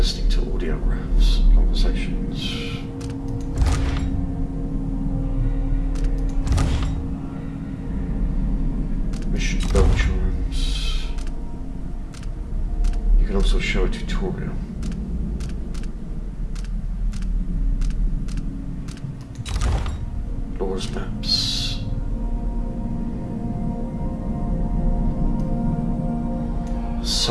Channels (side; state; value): both; identical; correlation 1.00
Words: to audiographs, conversations. Mission bell charms. You can also show a tutorial. Lore's maps.